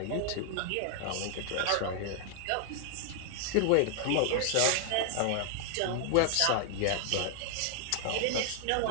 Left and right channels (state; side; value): different; both; correlation -0.01